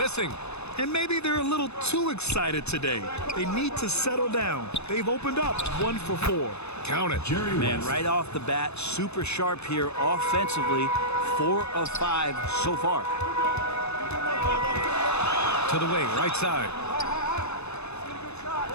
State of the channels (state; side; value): late; right; 0.80 ms